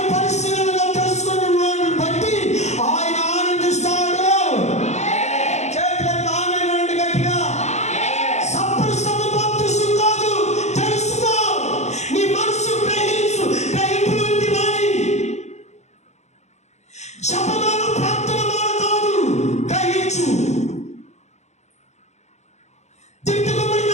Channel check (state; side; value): late; right; 0.33 ms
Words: పరిశీలనగా తెలుసుకున్న వాడిని బట్టి ఆయన ఆనందిస్తాడు. చేతులకు ఆనందండి గట్టిగా. సంపూర్ణ బాప్తిసం కాదు, తెలుసుకో. నీ మనసు గ్రహించు, గ్రహింపులోకి రాని. జపమాల ప్రార్థనమాల కాదు, గ్రహించు. తిట్టుకోబడిన